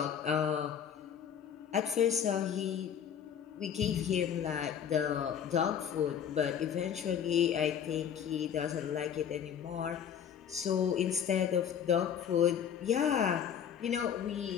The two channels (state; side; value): quieter; right; 8.5 dB